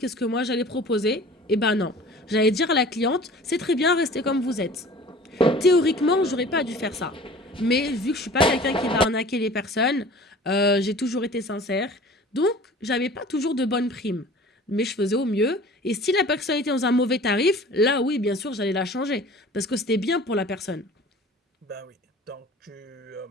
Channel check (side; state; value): both; normal; correlation 0.44